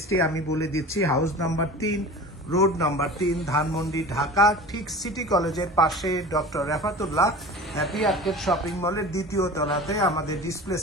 আমি বলে দিচ্ছি। House number 3, road number 3, Dhanmondi, Dhaka. ঠিক সিটি কলেজের পাশে doctor Refatullah happy arcade shopping মলের দ্বিতীয় তলাতে আমাদের ডিসপ্লে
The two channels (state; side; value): normal; both; correlation 0.36